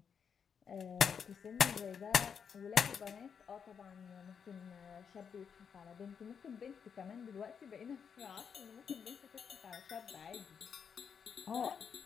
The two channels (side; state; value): right; quieter; 6.9 dB